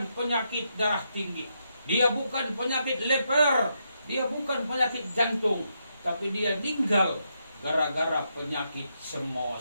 penyakit darah tinggi. Dia bukan penyakit leper. Dia bukan penyakit jantung. Tapi dia meninggal gara-gara penyakit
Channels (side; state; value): both; inverted; correlation -0.81